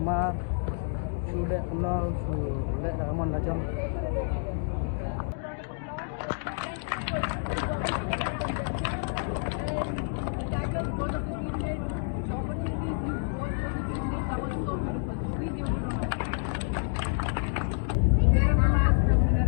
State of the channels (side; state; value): right; silent; 59 dB below the other